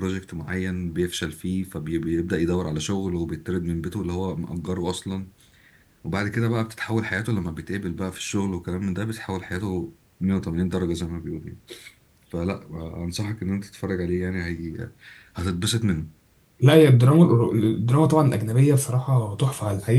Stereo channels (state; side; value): identical; both; correlation 1.00